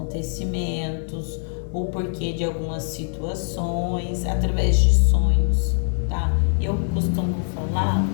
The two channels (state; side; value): silent; right; 63 dB below the other